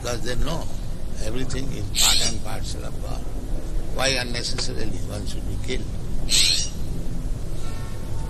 they know everything is part and parcel of God. Why unnecessarily one should be killed?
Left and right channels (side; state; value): both; identical; correlation 1.00